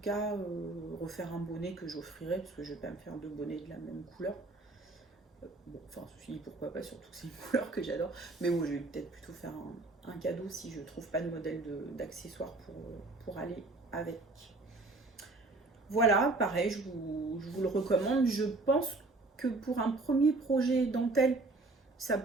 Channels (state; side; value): quieter; left; 3.2 dB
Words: cas refaire un bonnet que j'offrirai, parce que je vais pas me faire deux bonnets de la même couleur. Bon, enfin, ceci dit, pourquoi pas, surtout que c'est une couleur que j'adore. Mais bon, je vais peut-être plutôt faire un cadeau si je trouve pas de modèle d'accessoires pour aller avec. Voilà, pareil, je vous le recommande. Je pense que pour un premier projet dentelle, ça